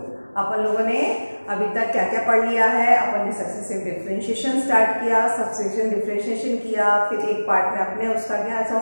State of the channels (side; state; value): both; inverted; correlation -1.00